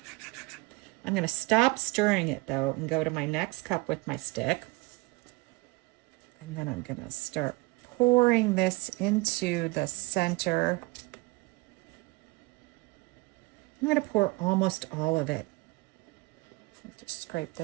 I'm going to stop stirring it though and go to my next cup with my stick. And then I'm going to start pouring this into the center. I'm going to pour almost all of it. Just scrape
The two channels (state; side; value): quieter; left; 23.9 dB